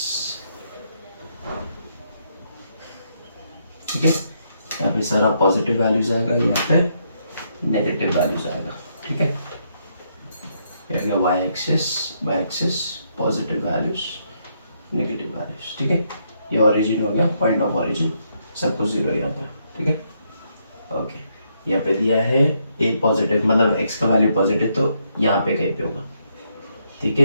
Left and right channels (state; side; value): inverted; both; correlation -0.76